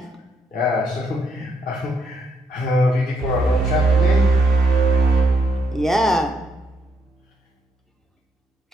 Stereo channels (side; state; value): both; normal; correlation 0.75